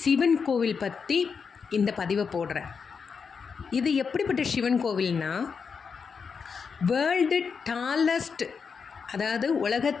சிவன் கோவில் பற்றி இந்த பதிவை போடுறேன். இது எப்படிப்பட்ட சிவன் கோவில்னா, வேர்ல்டு டாலஸ்ட், அதாவது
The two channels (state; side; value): quieter; right; 5.8 dB